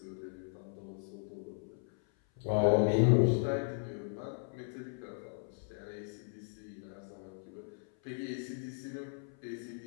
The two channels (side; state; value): right; silent; 53 dB below the other